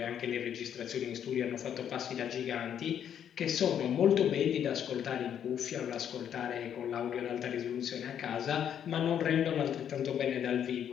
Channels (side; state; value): right; quieter; 9.2 dB